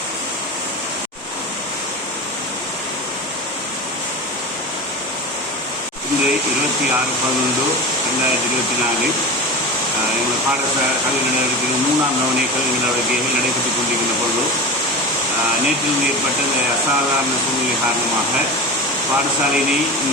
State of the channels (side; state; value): both; normal; correlation 0.27